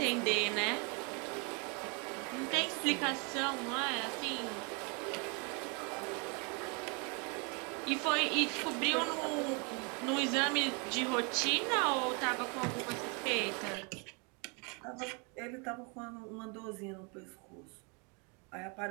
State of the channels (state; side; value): quieter; left; 33.8 dB